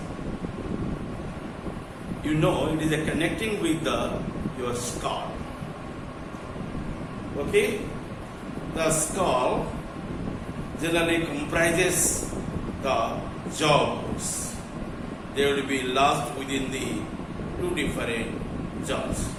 You know, it is a connecting with your skull. Okay? The skull generally comprises the jaw bones. They will be lodged within the two different jaws.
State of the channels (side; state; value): both; identical; correlation 1.00